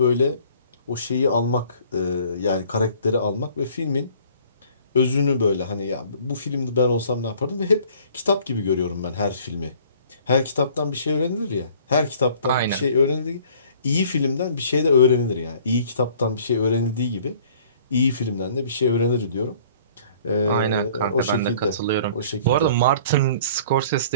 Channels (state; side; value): inverted; both; correlation -0.54